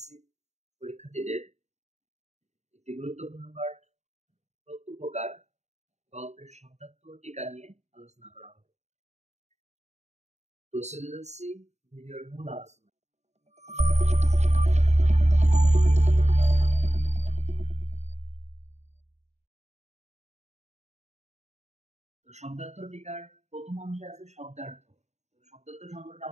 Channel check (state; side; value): late; left; 0.33 ms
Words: পরীক্ষার্থীদের একটি গুরুত্বপূর্ণ পাঠ প্রত্যুপকার গল্পের শব্দার্থ ও টিকা নিয়ে আলোচনা করা হবে। তো চলে যাচ্ছি ভিডিওর মূল আলোচনা। শব্দার্থ টিকার প্রথম অংশে আছে শব্দার্থ। শব্দার্থ সম্পর্কে